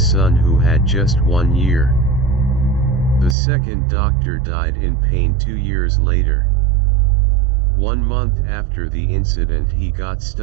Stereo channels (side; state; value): left; drops out; at 3.4 s